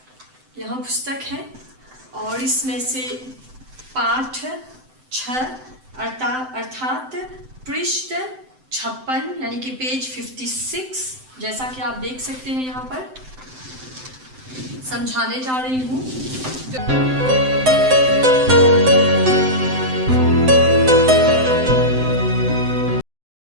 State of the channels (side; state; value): left; late; 7.8 ms